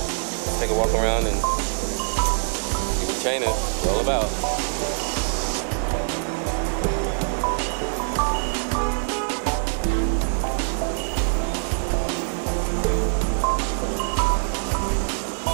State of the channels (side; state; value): left; silent; digital silence